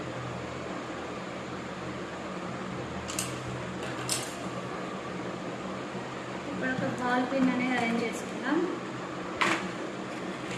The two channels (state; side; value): identical; both; correlation 1.00